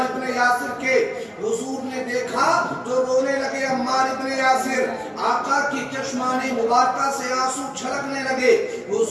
ابن یاسر کے. حضور نے دیکھا تو رونے لگے عمار ابن یاسر، آقا کی چشمان مبارکہ سے آنسو چھلکنے لگے.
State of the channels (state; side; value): identical; both; correlation 1.00